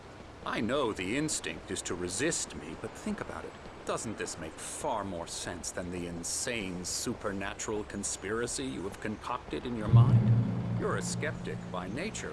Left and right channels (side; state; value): both; identical; correlation 1.00